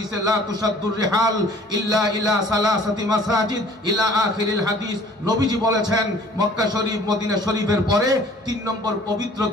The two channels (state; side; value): normal; both; correlation 0.52